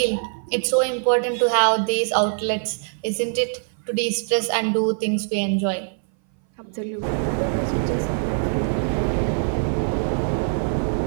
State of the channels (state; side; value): silent; left; 60 dB below the other